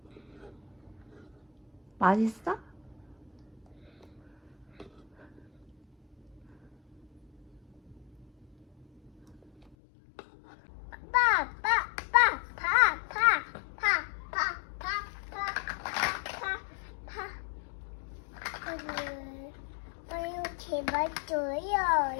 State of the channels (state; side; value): drops out; right; at 9.8 s